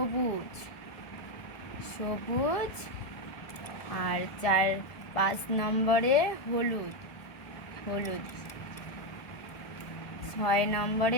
আর 5 নম্বরে হলুদ। 6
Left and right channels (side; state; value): right; late; 1.7 ms